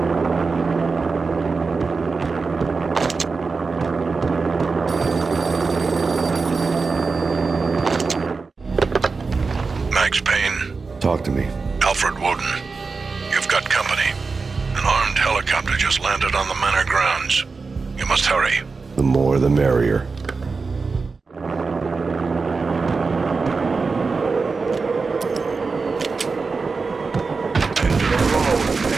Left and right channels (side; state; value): left; quieter; 4.4 dB